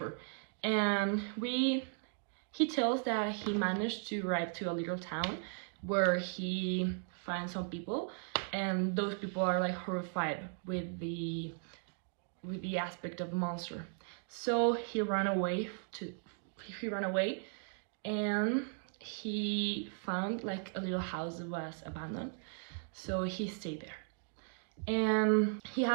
and he tells that he managed to arrive to a little town where he finds some people, and those people are like horrified with the aspect of the monster. So he ran away and he found like a little house that was abandoned, so he stayed there. And he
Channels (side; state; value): left; silent; 53 dB below the other